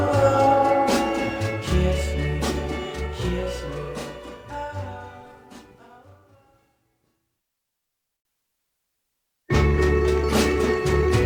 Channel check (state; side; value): identical; both; correlation 1.00